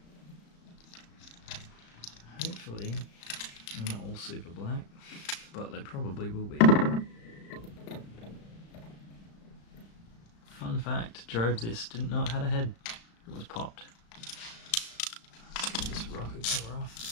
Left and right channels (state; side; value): late; right; 35 ms